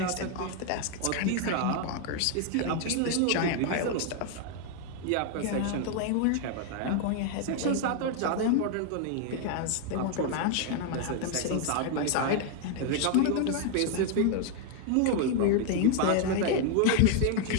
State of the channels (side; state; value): both; different; correlation 0.00